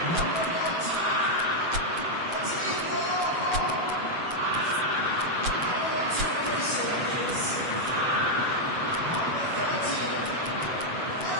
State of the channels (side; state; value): left; late; 7.8 ms